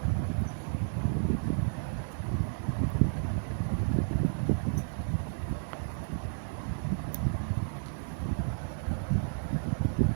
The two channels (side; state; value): left; silent; digital silence